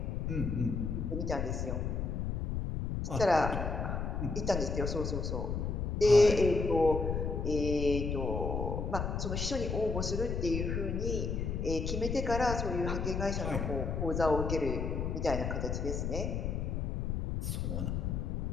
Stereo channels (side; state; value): left; noise; rumble, 1 dB below the sound